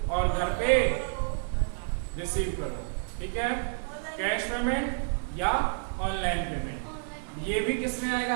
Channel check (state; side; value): silent; left; digital silence